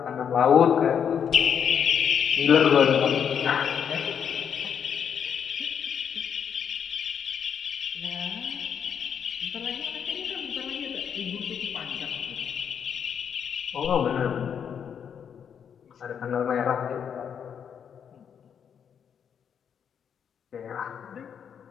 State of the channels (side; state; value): right; quieter; 7.8 dB